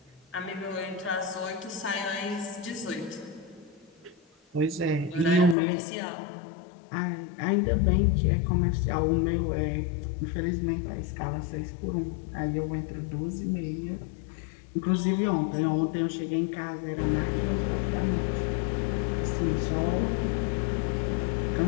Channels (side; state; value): right; drops out; at 5.6 s